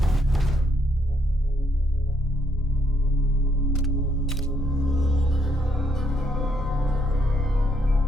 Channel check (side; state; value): both; normal; correlation 0.74